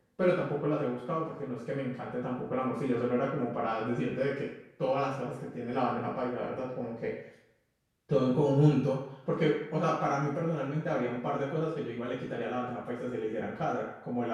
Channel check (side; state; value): both; identical; correlation 1.00